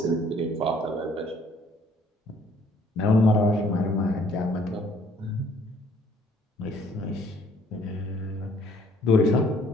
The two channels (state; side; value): normal; both; correlation 0.60